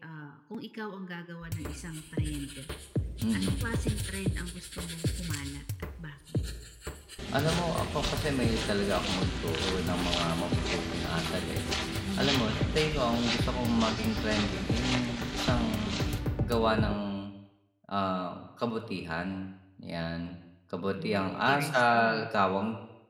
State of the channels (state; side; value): identical; both; correlation 1.00